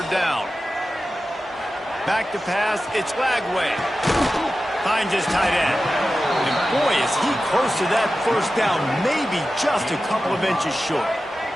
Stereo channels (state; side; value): normal; both; correlation 0.94